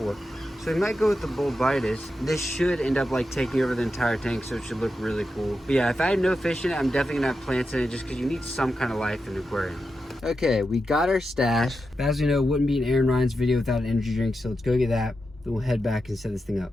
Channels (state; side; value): normal; both; correlation 0.88